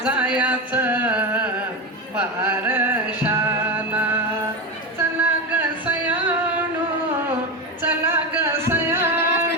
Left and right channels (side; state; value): both; normal; correlation 0.16